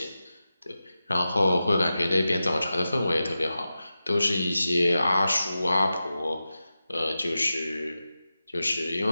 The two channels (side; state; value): both; inverted; correlation -0.93